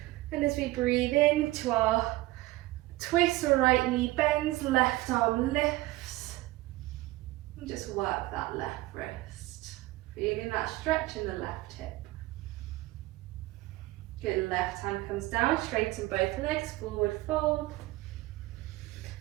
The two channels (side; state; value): left; quieter; 18.5 dB